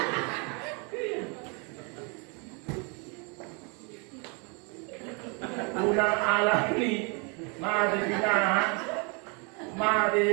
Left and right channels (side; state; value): left; quieter; 33.9 dB